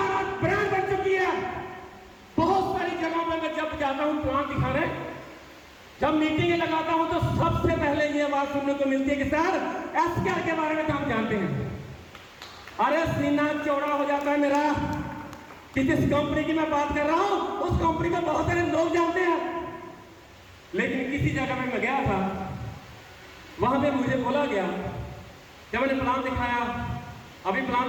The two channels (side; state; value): both; identical; correlation 1.00